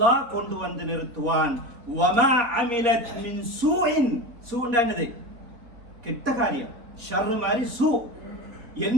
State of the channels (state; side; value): late; left; 4.2 ms